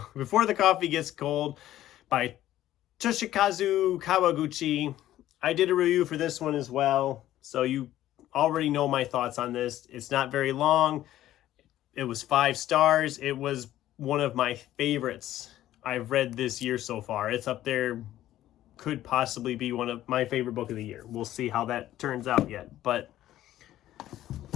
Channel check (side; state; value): right; quieter; 13.5 dB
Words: Before the Coffee Gets Cold by Toshikazu Kawaguchi. I did a review for this one as well, so you already know my thoughts on this. It's not very long. It was 5 stars. It was one of my favorites I've read this year so far. It's up there. Could possibly be one of my favorite book of the year. We'll see how that turns out yet. But